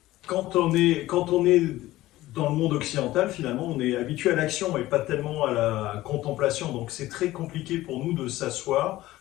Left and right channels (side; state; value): right; quieter; 16.5 dB